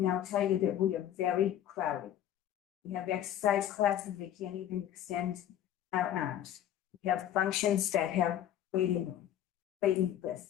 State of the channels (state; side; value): quieter; right; 11.2 dB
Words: I'll tell you that we are very crowded. We have exercise classes, we can't even extend our arms. We have functions that have waiting lists.